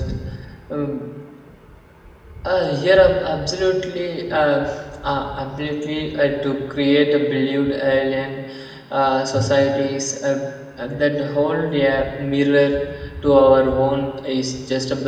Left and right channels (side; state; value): both; identical; correlation 1.00